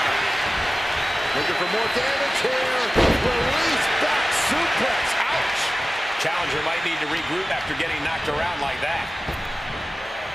Looking for more damage here. Release back suplex. Ouch. Challenger might need to regroup after getting knocked around like that.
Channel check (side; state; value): both; normal; correlation 0.96